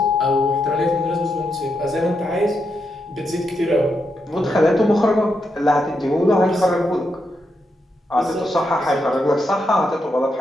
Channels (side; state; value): both; normal; correlation 0.83